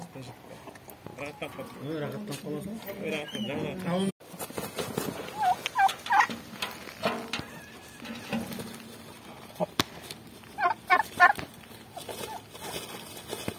Rahattan qoldim. Rahattan qolasan. Rahattan жаңа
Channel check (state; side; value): identical; both; correlation 1.00